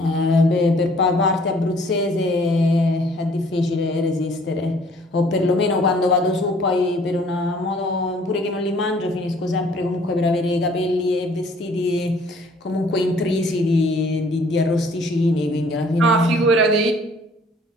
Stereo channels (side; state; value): both; normal; correlation 0.58